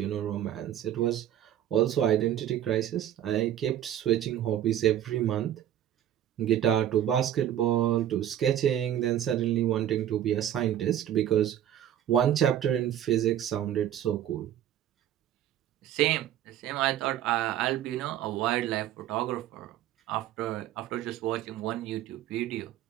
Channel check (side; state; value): left; quieter; 11.3 dB